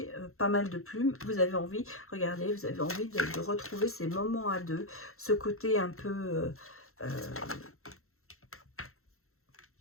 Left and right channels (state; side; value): late; right; 0.62 ms